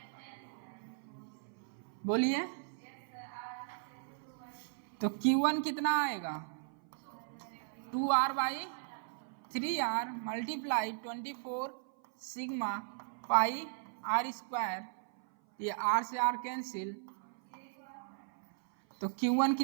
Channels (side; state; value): left; silent; 53 dB below the other